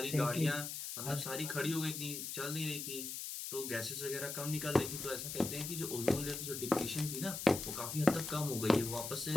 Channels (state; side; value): noise; left; hiss, 5 dB below the sound